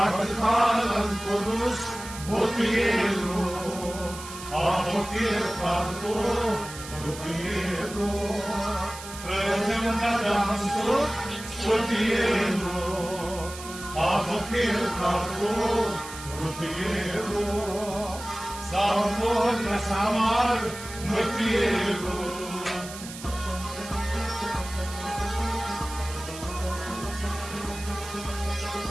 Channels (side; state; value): right; noise; hiss, 13 dB below the sound